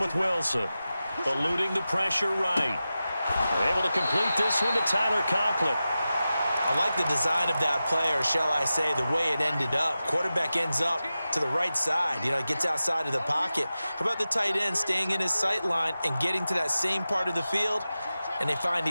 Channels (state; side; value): inverted; both; correlation -0.94